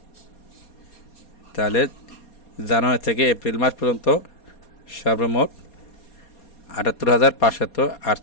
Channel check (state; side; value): late; right; 4.2 ms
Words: তাহলে জানুয়ারি থেকে এপ্রিল মাস পর্যন্ত সর্বমোট